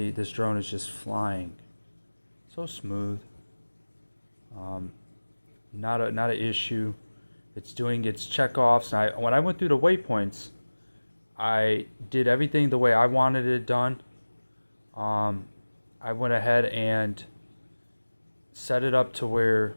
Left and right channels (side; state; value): both; inverted; correlation -1.00